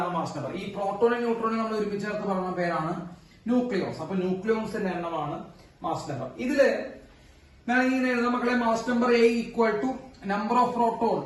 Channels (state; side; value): identical; both; correlation 1.00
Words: മാസ് നമ്പർ. ഈ പ്രോട്ടോണും ന്യൂട്രോണും നമ്മൾ ഒരുമിച്ച് ചേർത്ത് പറഞ്ഞ പേരാണ് ന്യൂക്ലിയോൺസ്. അപ്പൊ ന്യൂക്ലിയോൺസിന്റെ എണ്ണമാണ് മാസ് നമ്പർ. ഇതില് ഞാൻ ഇങ്ങനെ എഴുതാം മക്കളെ. Mass number A equal to number of proton.